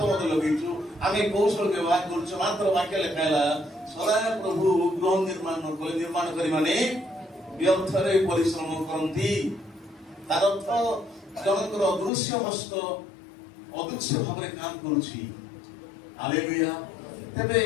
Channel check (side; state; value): right; drops out; at 12.1 s